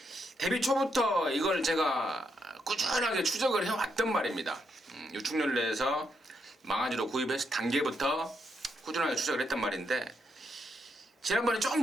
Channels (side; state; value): both; normal; correlation 0.79